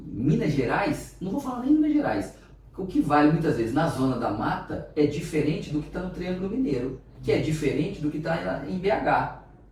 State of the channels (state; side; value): identical; both; correlation 1.00